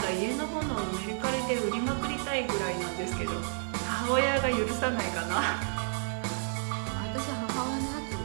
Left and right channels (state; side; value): silent; left; 57 dB below the other